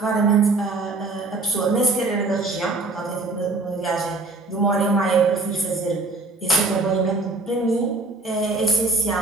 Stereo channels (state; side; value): quieter; left; 3.4 dB